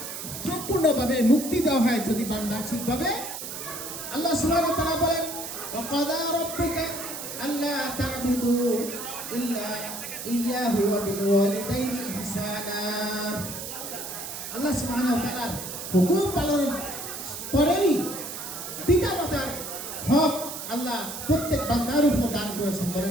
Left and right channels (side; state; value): right; noise; hiss, 8 dB below the sound